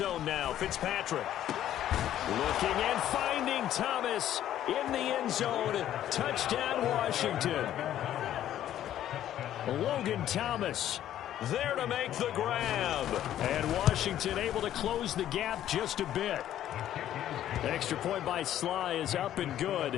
now, Fitzpatrick. Looking and finding Thomas in the end zone. Touchdown, Washington. Logan Thomas there to make the grab. And Washington able to close the gap just a bit. The extra point by Sly is up and good.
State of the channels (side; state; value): right; quieter; 11.8 dB